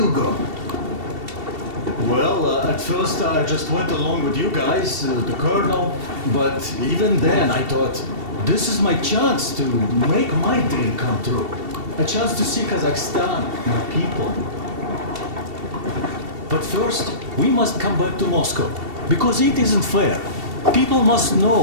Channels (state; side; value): late; left; 2.7 ms